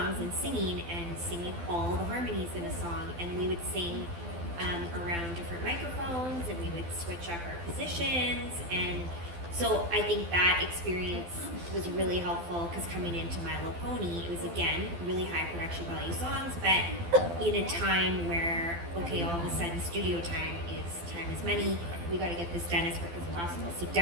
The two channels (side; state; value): left; late; 12 ms